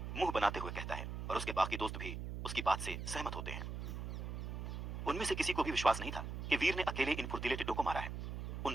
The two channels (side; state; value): right; noise; hum, 5 dB below the sound